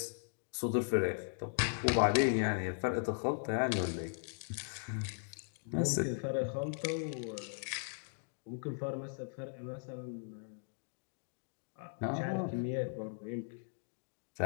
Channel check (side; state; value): right; silent; digital silence